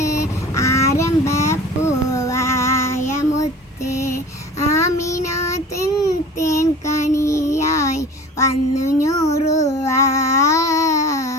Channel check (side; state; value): both; normal; correlation 0.41